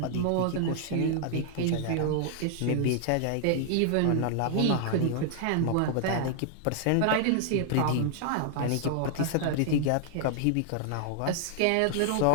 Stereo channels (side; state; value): both; different; correlation -0.01